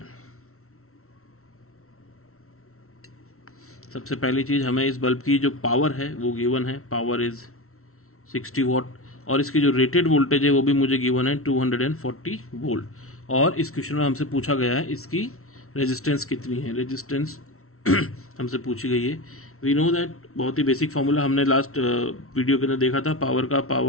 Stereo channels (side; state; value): right; late; 0.63 ms